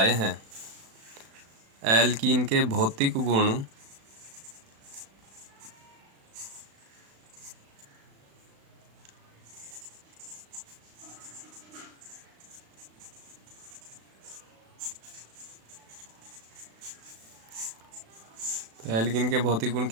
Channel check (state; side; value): late; left; 36 ms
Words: हैं। एल्कीन के भौतिक गुण एल्कीन के भौतिक गुण